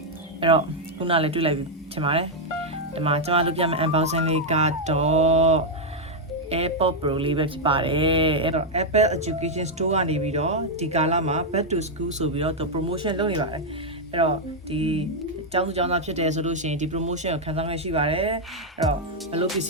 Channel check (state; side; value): normal; both; correlation -0.02